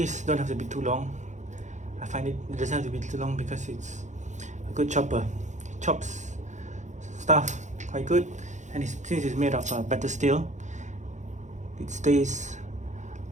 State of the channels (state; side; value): late; left; 0.35 ms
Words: don't have to be too long. I find it doesn't have to be too long because it's a good chopper. It chops stuff quite good, and since it's made of better steel, it stays